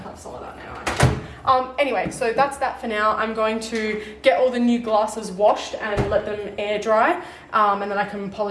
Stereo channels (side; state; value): both; identical; correlation 1.00